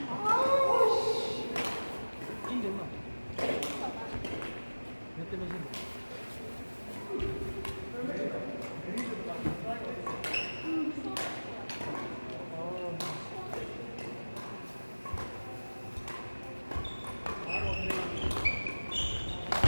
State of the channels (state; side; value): inverted; both; correlation -1.00